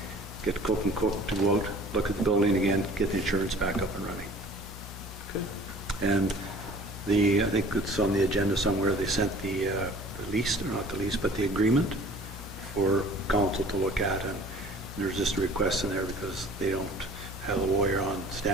get Cook and Cook to go out, look at the building again, get the insurance back up and running. Okay. And I think it's on the agenda somewhere, they sent the lease, or not the lease, but the agreement for council to look at, and there's just a request in there because they don't have a lawyer on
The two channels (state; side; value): normal; both; correlation 0.48